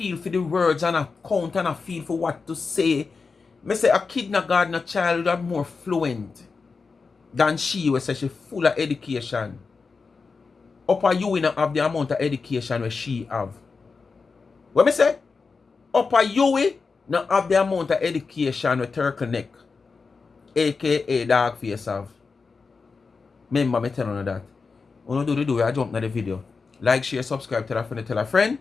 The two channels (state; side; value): quieter; right; 4.7 dB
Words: for the words and a count and a feel for what to say, me say a kindergarten child are more fluent than she was say she full of education. Upper you not have the amount of education where she have. What me say? Upper you not have the amount of education with Turkle Neck, A.K.A. dog face have. Remember me telling you that. When you do I jump into the video. Like, share, subscribe, tell a friend, tell a friend.